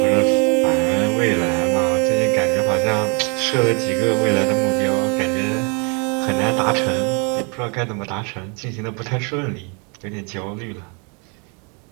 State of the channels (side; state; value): left; quieter; 34.4 dB